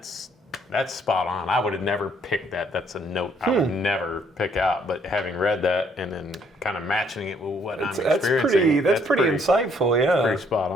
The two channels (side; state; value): both; normal; correlation 0.66